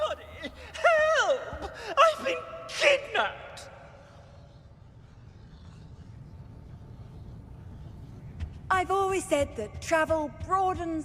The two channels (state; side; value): identical; both; correlation 1.00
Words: Help! I've been kidnapped! I've always said that travel